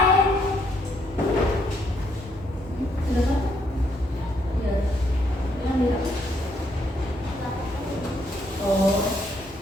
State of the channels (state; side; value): normal; both; correlation 0.72